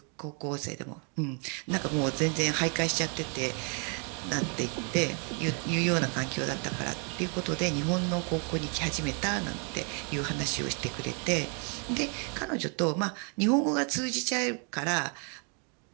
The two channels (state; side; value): quieter; left; 37.5 dB